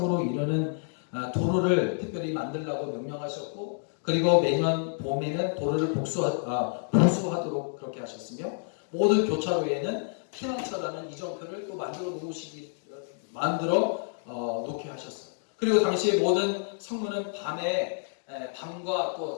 이르는 도로를 특별히 만들라고 명령하셨고 그리고 매년 봄에는 도로를 보수하도록 그렇게 하셨으며 모든 교차로에는 피난처라는 이정표를 또 만들어 놓게 하셨어요. 그리고 당시에 모든 성문은 밤과 또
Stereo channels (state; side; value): silent; right; digital silence